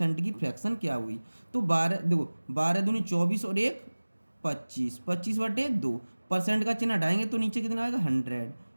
की फ्रैक्शन क्या हुई। तो 12, देखो 12 दूनी 24 और 1 25, 25/2, परसेंट का चिन्ह हटाएंगे तो नीचे कितना आएगा? 100।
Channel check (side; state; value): both; inverted; correlation -1.00